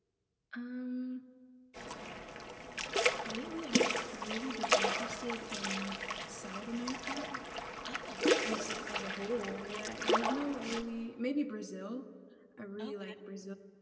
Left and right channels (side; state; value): both; identical; correlation 1.00